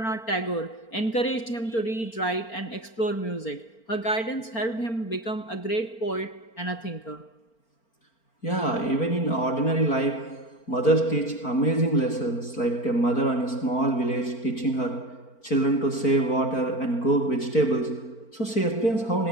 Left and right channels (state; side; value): late; right; 4.4 ms